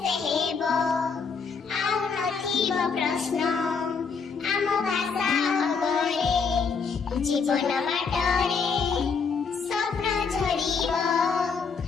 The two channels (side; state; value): right; quieter; 5.4 dB